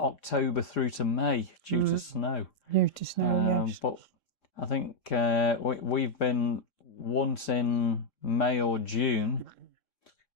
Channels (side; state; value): right; late; 3.7 ms